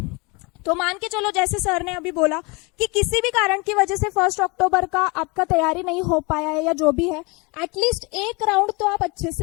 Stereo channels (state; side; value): quieter; right; 28.0 dB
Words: तो मान के चलो जैसे सर ने अभी बोला कि किसी भी कारण की वजह से 1st अक्टूबर का आपका तैयारी नहीं हो पाया है या जो भी है, एटलीस्ट एक राउंड तो आप अच्छे